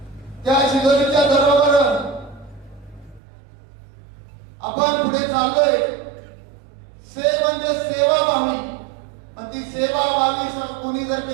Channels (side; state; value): left; drops out; at 3.2 s